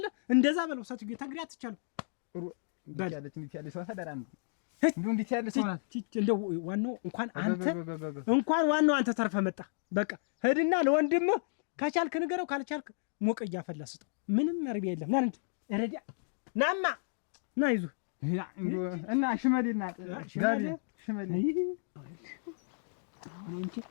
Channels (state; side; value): silent; right; digital silence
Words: እንደዛ በለው ሰትጌ ተንግዲህ አትቻለው እንዴት ያለ ሰው ታደራ ነው እንዴት ያለ ሰው ናት። እንደው ዋናው እንኳን ዋናው አንተ ተርፈ መጣ። በቃ ሄድና ለወንድምህ ከቻልክ ንገረው፣ ካልቻልክ ሞቀ እያፈላ ስጠው። ምንም አርቢያ የለም። ና እንዴ ረዲያ ናማ ና ይዙ እና ሽመሌና ጋቢ ሽመሌ